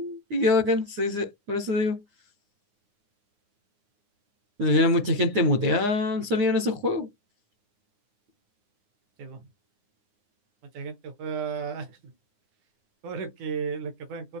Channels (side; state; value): left; late; 9.7 ms